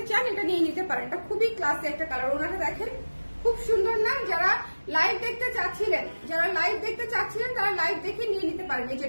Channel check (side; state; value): both; inverted; correlation -1.00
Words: চান, এটা নিয়ে নিতে পারেন, এটা খুবই ক্লাসি একটা কালার। ওড়নাটা দেখেন, খুব সুন্দর না? যারা লাইভ দেখতে চাচ্ছিলেন, তারা লাইভ দেখে নিয়ে নিতে পারেন এই যে